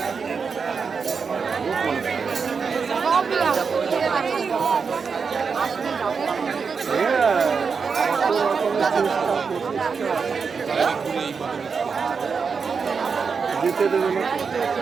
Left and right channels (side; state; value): left; quieter; 5.5 dB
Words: দিতে দেবে না।